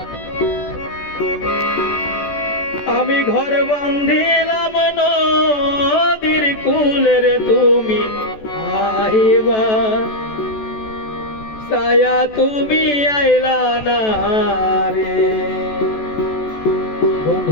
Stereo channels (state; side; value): late; right; 14 ms